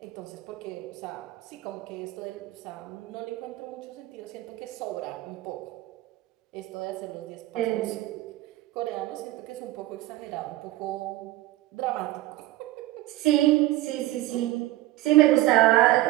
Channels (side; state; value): left; quieter; 17.0 dB